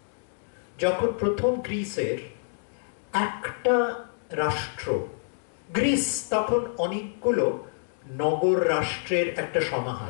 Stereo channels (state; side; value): silent; right; digital silence